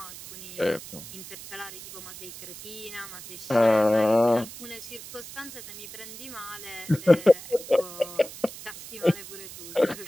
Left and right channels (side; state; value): right; noise; hiss, 13 dB below the sound